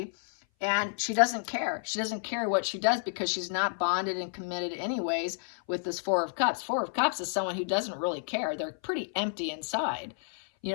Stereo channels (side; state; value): right; silent; 57 dB below the other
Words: and she doesn't care. She doesn't care what she does because she's not bonded and committed anyways with this Four of Cups. Four of Cups is someone who doesn't really care. They're pretty empty inside. You